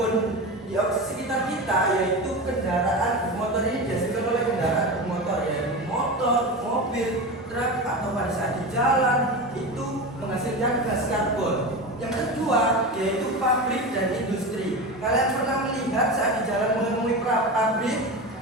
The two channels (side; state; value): both; normal; correlation 0.24